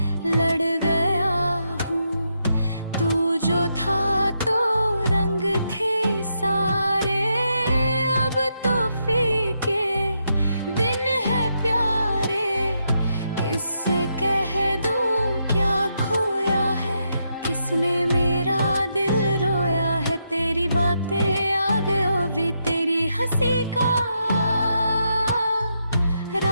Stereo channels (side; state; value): both; inverted; correlation -0.81